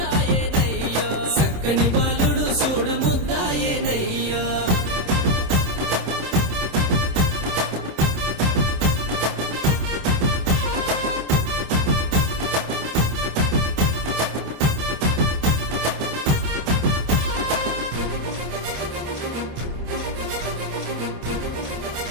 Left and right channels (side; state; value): left; late; 26 ms